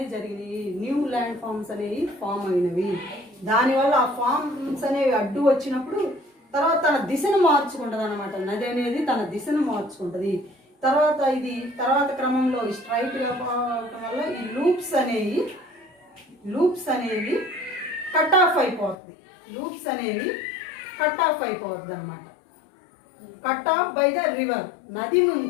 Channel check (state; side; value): drops out; right; at 18.9 s